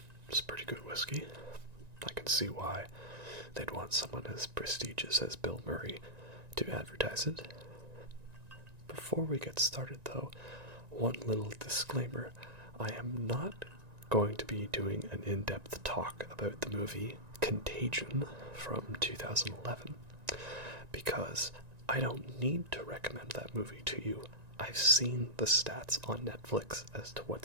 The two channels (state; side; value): late; left; 1.9 ms